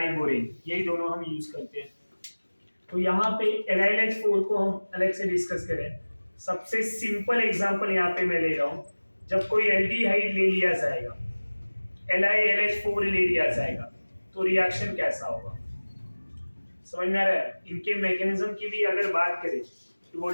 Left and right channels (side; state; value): both; inverted; correlation -1.00